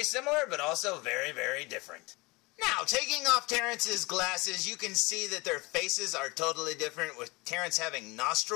similar, but also very, very different. Now, taking off Terrence's glasses, you can see that their faces are totally different, with Terrence having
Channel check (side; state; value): right; quieter; 24.5 dB